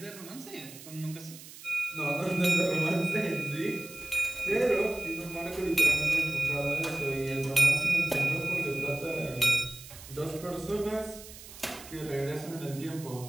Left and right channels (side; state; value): right; noise; hiss, 16 dB below the sound